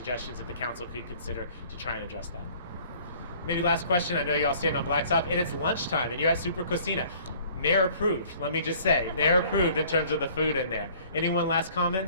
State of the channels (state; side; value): inverted; both; correlation -0.53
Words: that the council could consider to try and address that. Maybe last question. I know you all stand on Blacktop, and it's lunchtime, and you're at Super Cocina. Mayor approved. Let me just say, Mayor approved in terms of the food in there. Anyone last